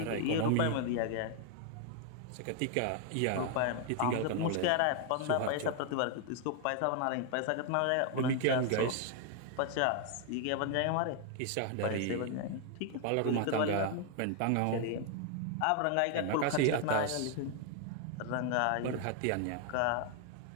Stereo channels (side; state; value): both; different; correlation 0.00